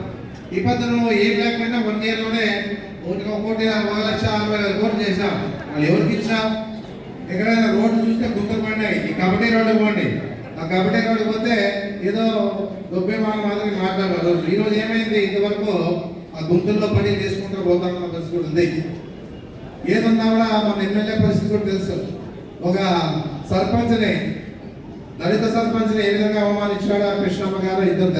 ఈ పద్ధతి ఏం లేకపోయినా 1 year లోనే 1,60,000 కోట్లు చేశాం. వాళ్ళు ఎవరికి ఇచ్చాం? ఎక్కడైనా రోడ్డు చూస్తే గుంతలు పడినాయి. ఈ కబడ్డీ రోడ్డు పోండి, ఆ కబడ్డీ రోడ్డు పోతే ఏదో గొప్ప మాదిరి మాట్లాడారు. ఈరోజు ఏమైంది? ఇంతవరకు ఆ గుంతల్లో పని చేసుకుంటూ పోతామన్న పరిస్థితి కూడా ఉంది. ఏదన్నా కూడా మన ఎమ్మెల్యే పరిస్థితి కూడా తెలుసు. ఒక సర్పంచ్ని, దళిత సర్పంచ్ని ఏ విధంగా అవమానించాడో కృష్ణమ్మ గారు ఇద్దరు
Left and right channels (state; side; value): identical; both; correlation 1.00